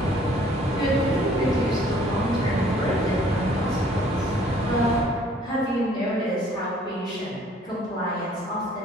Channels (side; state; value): both; normal; correlation 0.58